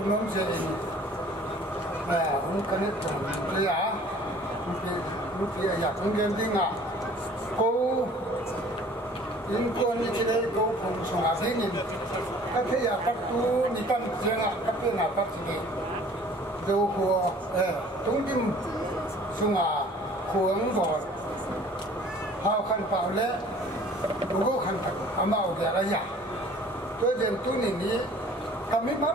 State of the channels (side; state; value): both; normal; correlation 0.51